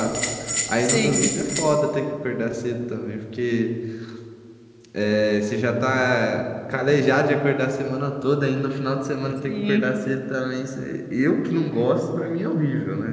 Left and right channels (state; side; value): identical; both; correlation 1.00